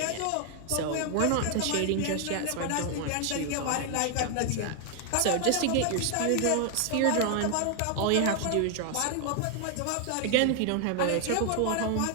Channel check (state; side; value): different; both; correlation 0.00